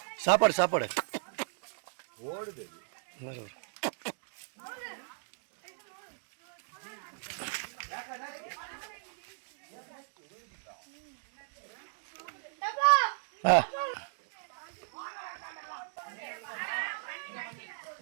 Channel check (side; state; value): left; silent; digital silence